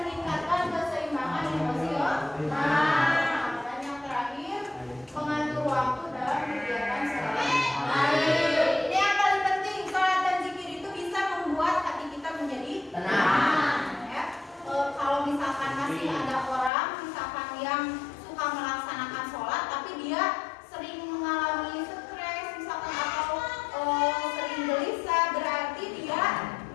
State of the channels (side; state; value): right; drops out; at 16.7 s